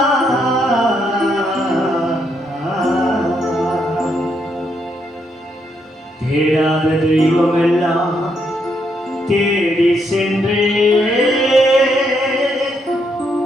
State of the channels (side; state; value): both; normal; correlation 0.76